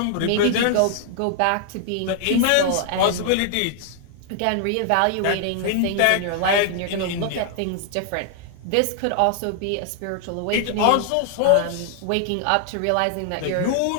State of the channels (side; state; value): both; different; correlation 0.00